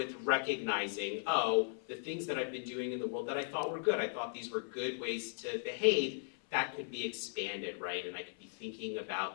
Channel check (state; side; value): silent; right; 53 dB below the other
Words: recognizing, the things that I've been doing in the world that I thought were good, I thought these were good ways to behave, that could be expanded, right? And I could be thinking